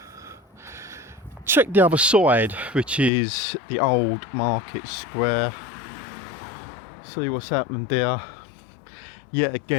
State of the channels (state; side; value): drops out; right; at 3.1 s